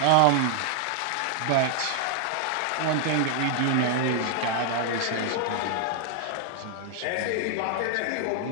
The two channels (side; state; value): both; different; correlation 0.00